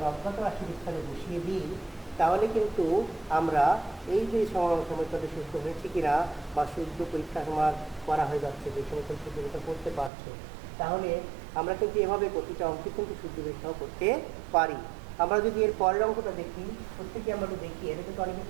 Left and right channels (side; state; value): left; drops out; at 10.1 s